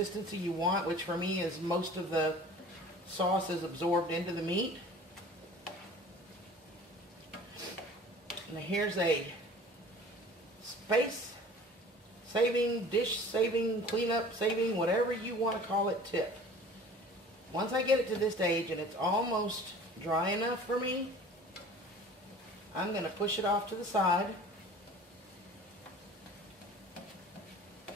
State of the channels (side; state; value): both; normal; correlation 0.45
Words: you want, which for me is most of the sauce is absorbed into the meat. Now here's a space saving, dish saving, cleanup saving, whatever you want to call it tip. Once I get it to this stage and it's almost dry enough for me, I'm going to push it off to the side.